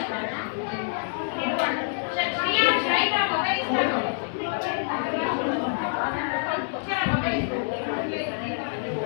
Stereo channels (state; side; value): silent; right; digital silence